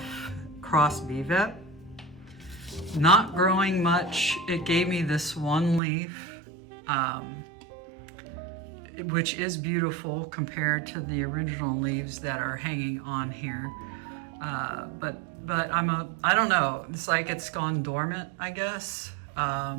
cross Vivet. Not growing much. It gave me this one leaf, which is beautiful compared to the original leaves that are hanging on here. But I don't know. It's like it's gone dormant, I guess,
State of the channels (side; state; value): left; drops out; at 5.8 s